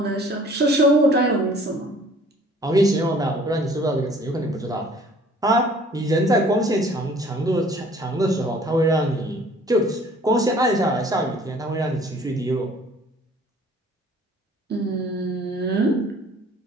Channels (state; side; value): normal; both; correlation 0.54